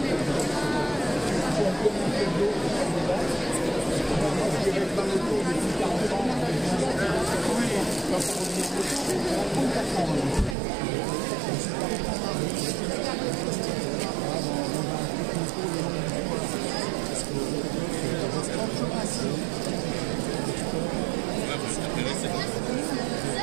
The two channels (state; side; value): drops out; left; at 10.6 s